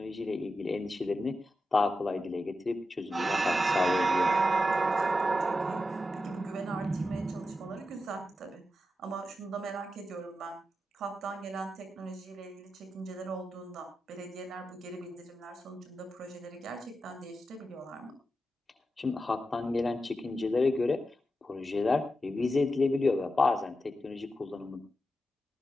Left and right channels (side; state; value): both; normal; correlation 0.89